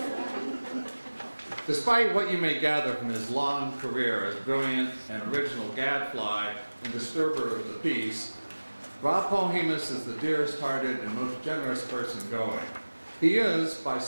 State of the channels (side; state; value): both; inverted; correlation -1.00